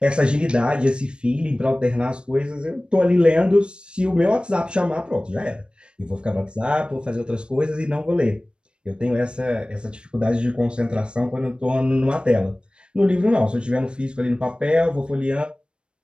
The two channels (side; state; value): left; late; 0.055 ms